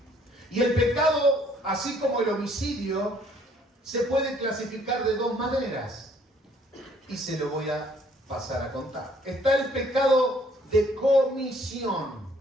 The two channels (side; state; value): both; normal; correlation 0.62